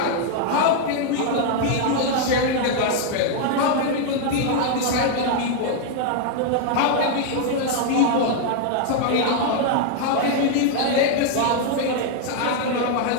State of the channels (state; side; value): different; both; correlation 0.00